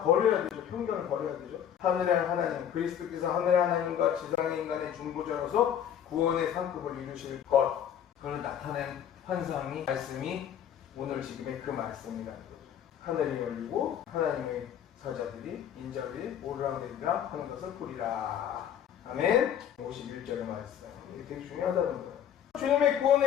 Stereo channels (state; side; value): quieter; right; 9.4 dB